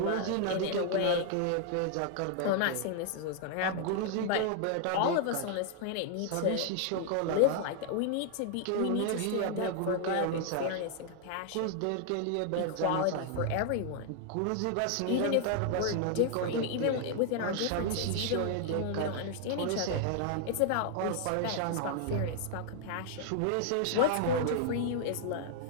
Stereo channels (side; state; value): both; different; correlation 0.00